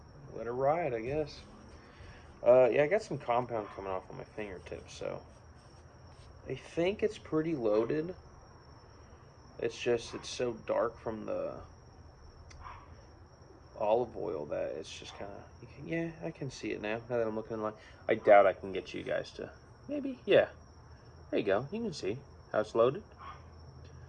Let it ride, I guess. Yeah, I got some compound coming off on my fingertips, so I think it's pretty loaded. It's just, it's so dark from the olive oil that it's just kind of, yeah, I can see it now that I'm looking in the light. I doubt I can get you guys to, maybe, yeah. There you go. You can see how it's loaded.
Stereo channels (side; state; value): both; identical; correlation 1.00